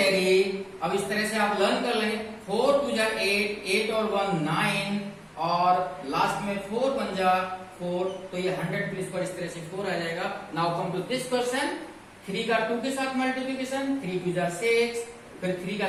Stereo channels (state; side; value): identical; both; correlation 1.00